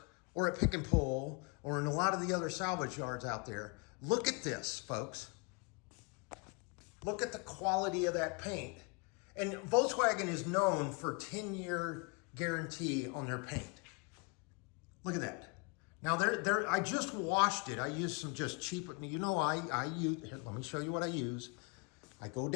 or at Pick and Pull or in a lot of the other salvage yards out there. Look at this, folks. Look at the quality of that paint. And Volkswagen is known for 10-year guarantee on their paint. Look at that. Now, I just washed it. I used some just cheap, I use, here, let me show you what I use. I go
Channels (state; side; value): quieter; right; 32.0 dB